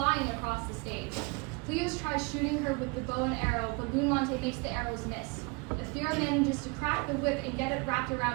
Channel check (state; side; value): quieter; left; 29.1 dB